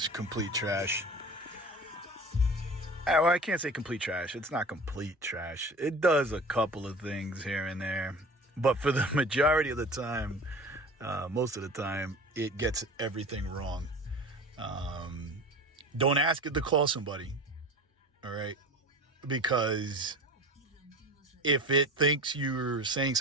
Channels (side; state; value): both; normal; correlation 0.36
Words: complete trash. Well, I can't say complete trash. It's not complete trash. It does a couple of things here and there. But for the majority of the time, most of the time, it gets everything wrong. Don't ask it to call somebody, all right? Because if it thinks you're saying